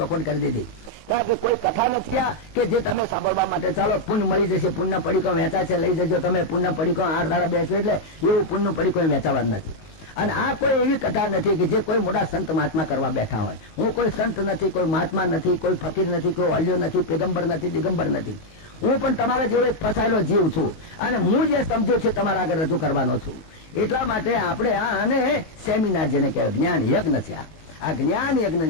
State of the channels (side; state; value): right; late; 18 ms